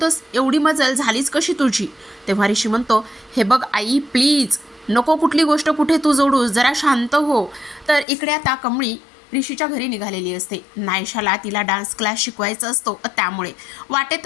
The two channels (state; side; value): drops out; right; at 8.1 s